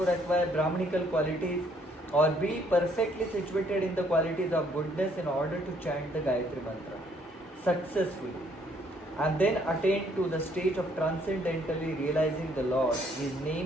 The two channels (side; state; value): both; normal; correlation 0.66